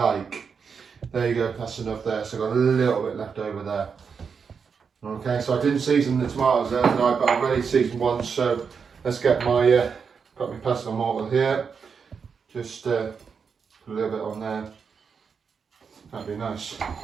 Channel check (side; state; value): left; quieter; 6.0 dB